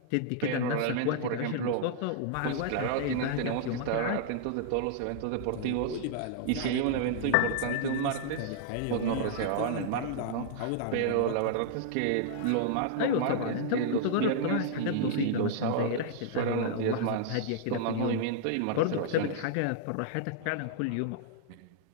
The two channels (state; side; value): different; both; correlation -0.01